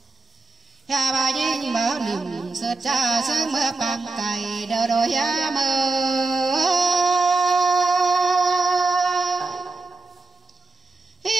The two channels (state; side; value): quieter; left; 3.6 dB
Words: bà nhìn mở niềm sơ cha sớm mơ bằng cày đờ đôi mơ